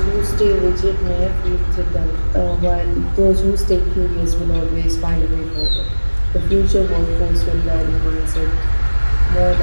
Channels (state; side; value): inverted; both; correlation -1.00